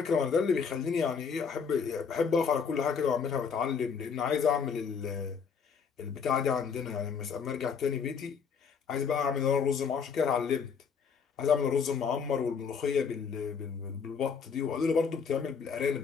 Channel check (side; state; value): right; quieter; 6.2 dB